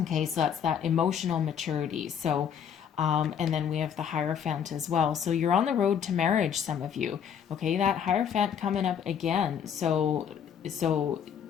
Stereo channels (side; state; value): right; quieter; 8.1 dB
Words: so that's that emotional maturity. So, and then we have the Hierophant as well. So you're on the road to marriage, some of you. Okay, that Hierophant coming up again. So